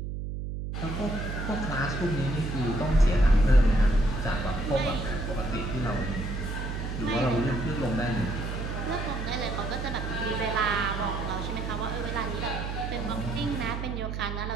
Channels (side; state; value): right; noise; hum, 5 dB below the sound